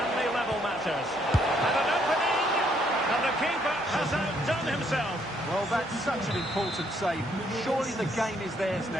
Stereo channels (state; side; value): normal; both; correlation 0.70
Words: they level matters? And an opening! And the keeper has outdone himself. Well, that's such an important save. Surely the game is theirs